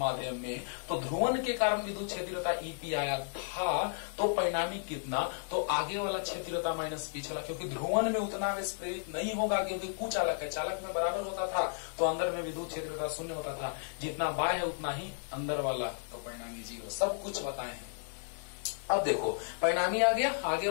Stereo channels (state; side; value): silent; right; digital silence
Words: में, तो ध्रुवन के कारण विद्युत क्षेत्रता ईपी आया था। तो परिणामी कितना? तो आगे वाला क्षेत्रता माइनस पिछला, क्योंकि ध्रुवन में उतना आवेश प्रेरित नहीं होगा, क्योंकि कुचालक है। चालक में बराबर होता था तो अंदर में विद्युत क्षेत्रता शून्य होता था। जितना बाह्य है उतना ही अंदर वाला, तो परिणामी 0। सब कुछ बताए हैं। अब देखो, परिणामी आ गया, आगे